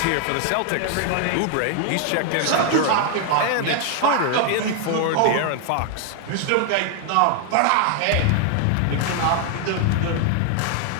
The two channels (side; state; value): both; different; correlation 0.00